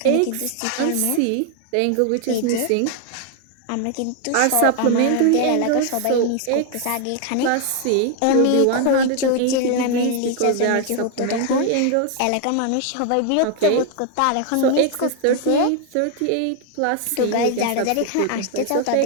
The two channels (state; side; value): different; both; correlation 0.00